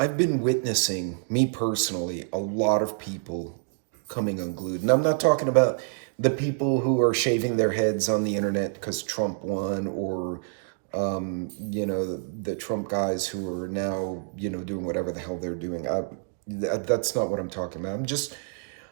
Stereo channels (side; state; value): left; silent; digital silence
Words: been witnessing, me personally, a lot of people coming unglued. And I'm not talking about the people who are shaving their heads on the internet because Trump won, or, the Trump guys who are now, doing whatever the hell they're doing. That's not what I'm talking about.